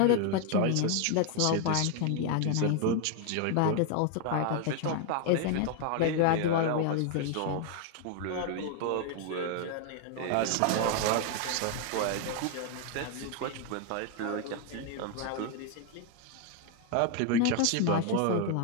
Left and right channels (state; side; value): different; both; correlation 0.01